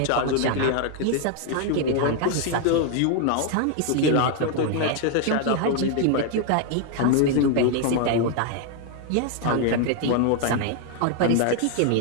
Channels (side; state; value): both; different; correlation 0.00